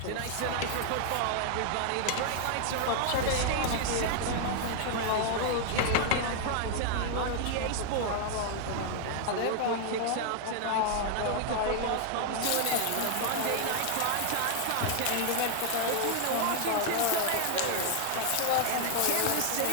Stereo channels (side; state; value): both; different; correlation 0.00